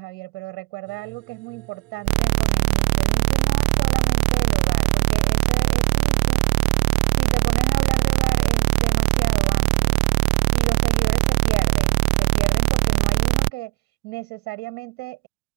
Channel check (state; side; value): quieter; left; 28.7 dB